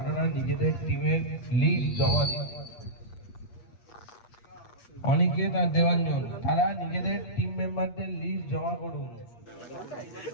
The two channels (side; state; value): right; late; 8.4 ms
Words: নিজেদের টিমের লিস্ট জমা দিন। অনিকেত আর দেবাঞ্জন তারা নিজেদের টিম মেম্বারদের লিস্ট জমা করুন।